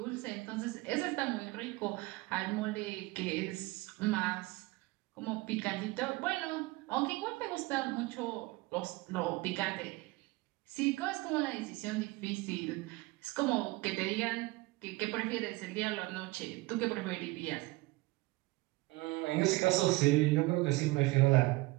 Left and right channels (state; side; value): quieter; left; 22.1 dB